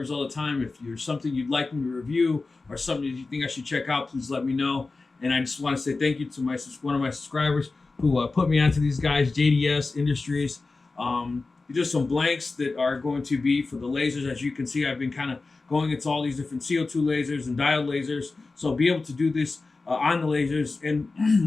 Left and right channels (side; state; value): right; quieter; 3.7 dB